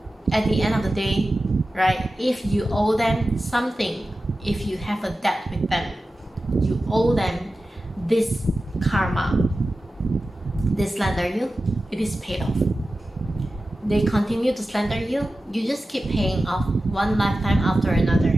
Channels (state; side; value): normal; both; correlation 0.94